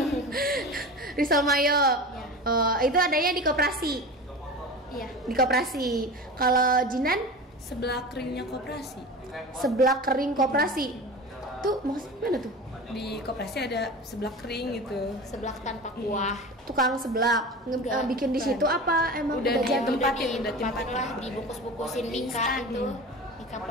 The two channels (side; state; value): both; normal; correlation 0.32